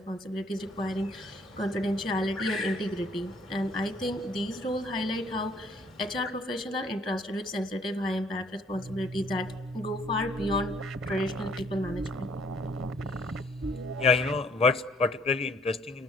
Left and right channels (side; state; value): both; normal; correlation 0.63